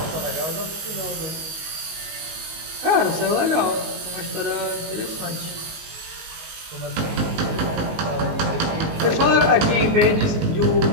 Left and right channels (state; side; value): late; left; 19 ms